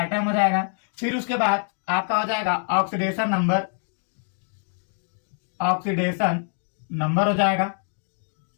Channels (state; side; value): silent; right; 62 dB below the other